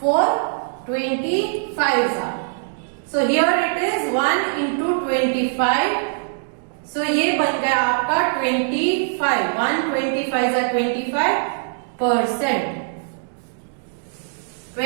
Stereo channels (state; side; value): silent; left; digital silence